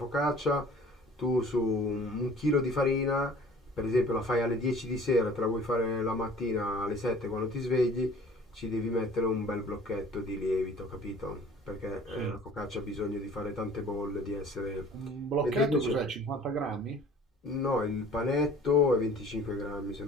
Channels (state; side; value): normal; both; correlation 0.49